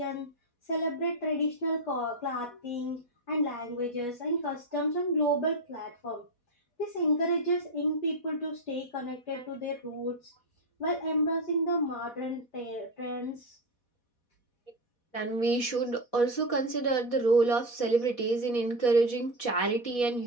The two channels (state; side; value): late; right; 4.1 ms